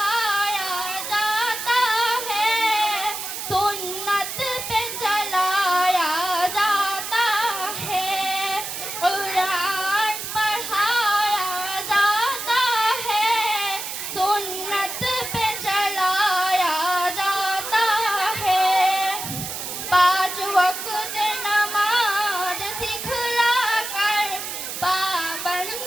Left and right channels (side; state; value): right; noise; hiss, 6 dB below the sound